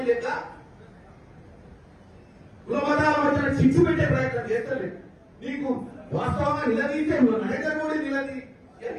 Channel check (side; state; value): both; identical; correlation 1.00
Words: లెక్క కుల మతాల మధ్య చిచ్చు పెట్టే ప్రయత్నం చేస్తలేదు. నీకు వాస్తవంగా నిలదీసే నరేంద్ర మోడీ